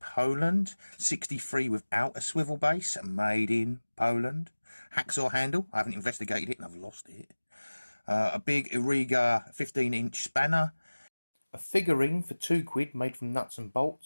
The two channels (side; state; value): both; inverted; correlation -1.00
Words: 63 without a swivel base, made in Poland. Hacksaw handle, I haven't investigated it and I've lost it. A big Irriga 15-inch spanner. A figurine for £2 made from nuts and